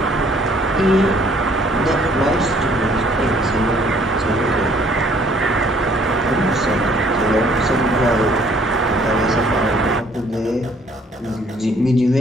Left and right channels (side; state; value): both; normal; correlation 0.61